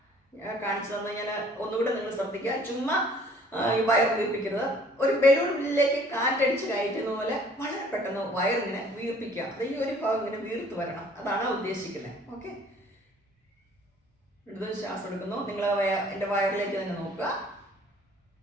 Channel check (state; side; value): normal; both; correlation 0.55